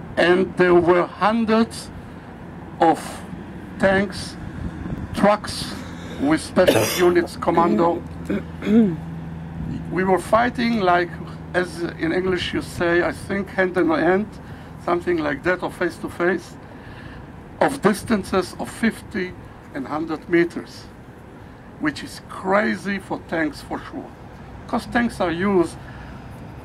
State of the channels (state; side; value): identical; both; correlation 1.00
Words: And there were hundreds of tanks, trucks with special units, commando. We were fighting like, as in English you say, I think hand in hand, something like that, or face to face, of distances of 50 and 100 meters, which is crazy for tanks for sure. Because tanks are used